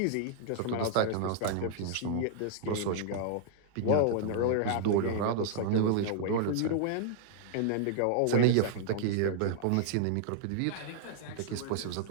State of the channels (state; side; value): different; both; correlation -0.01